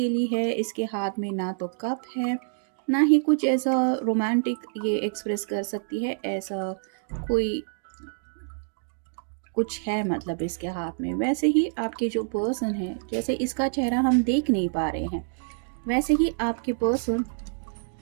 है, इसके हाथ में ना तो कप है ना ही कुछ ऐसा रोमांटिक ये एक्सप्रेस कर सकती है, ऐसा कोई कुछ है मतलब इसके हाथ में। वैसे ही आपके जो पर्सन है, जैसे इसका चेहरा हम देख नहीं पा रहे हैं, वैसे ही आपके पर्सन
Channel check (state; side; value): silent; left; digital silence